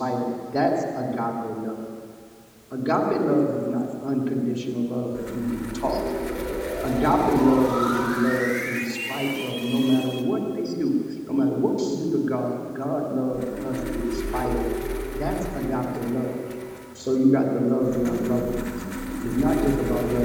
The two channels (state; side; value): identical; both; correlation 1.00